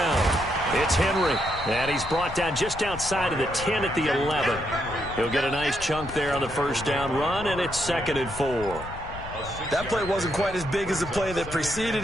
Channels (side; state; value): left; noise; rumble, 12 dB below the sound